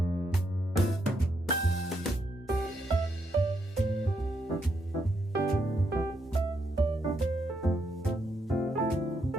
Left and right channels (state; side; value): normal; both; correlation 0.78